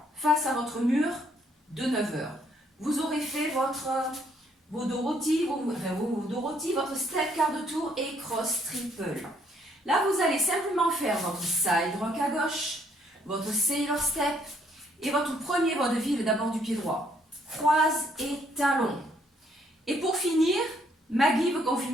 face à votre mur de 9 heures. Vous aurez fait vos Dorothy, votre step quart de tour et cross triple. Là, vous allez simplement faire votre side rock à gauche, votre sailor step et votre premier vaudeville d'abord du pied droit. Croise et talon. Et pour finir, Maggie veut qu'on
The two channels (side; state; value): both; normal; correlation 0.68